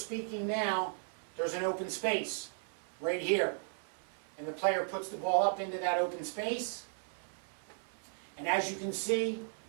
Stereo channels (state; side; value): silent; left; 54 dB below the other